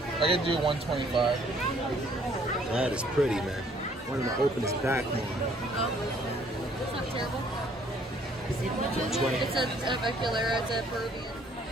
I can do 125. That is pretty, man. One of the openest back more. It's not terrible. 20. It's a Veculaira, it's a Peruvian.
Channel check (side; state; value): both; normal; correlation 0.62